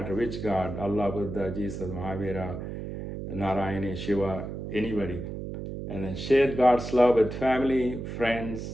which God, Allah, Buddha, Jesus, Mahavira, Narayana, Shiva, anybody. And then share God's love with family,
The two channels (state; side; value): noise; right; hum, 7 dB below the sound